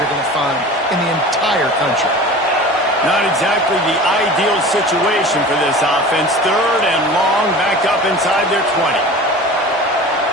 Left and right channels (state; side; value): normal; both; correlation 0.37